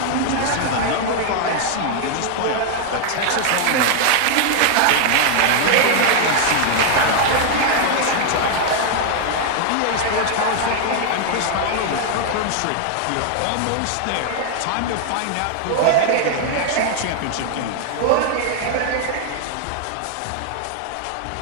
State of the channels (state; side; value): different; both; correlation 0.00